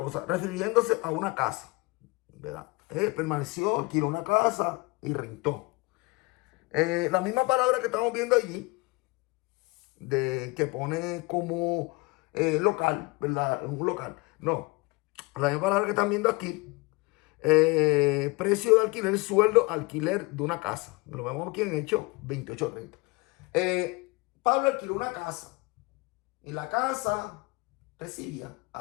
refiriéndose a una casa, ¿verdad? Permaneció, alquiló una casa y rentó. La misma palabra que estamos viendo allí, de que pone como local, ¿verdad? Un local. No, la misma palabra que están viendo aquí, precio de alquiler, sueldo, alquiler de una casa. Lo vemos aquí en Hechos 28:30. Pablo alquiló una casa y la casa recibía a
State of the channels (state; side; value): quieter; right; 25.4 dB